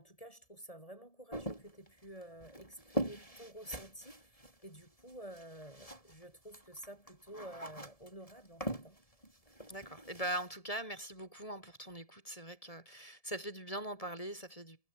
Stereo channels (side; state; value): right; late; 1.7 ms